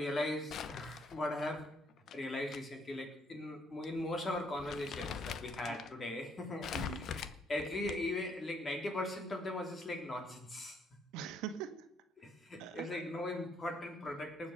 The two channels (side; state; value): both; normal; correlation 0.69